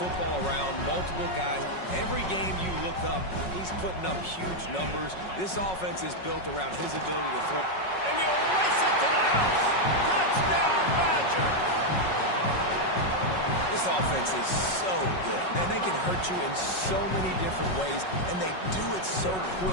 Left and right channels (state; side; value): late; right; 5.4 ms